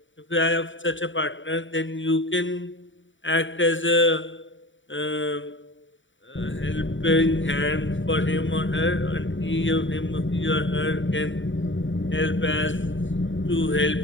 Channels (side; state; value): right; late; 0.55 ms